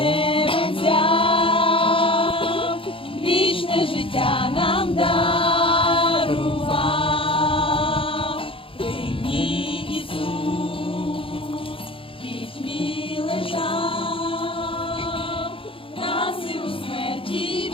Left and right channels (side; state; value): right; late; 0.26 ms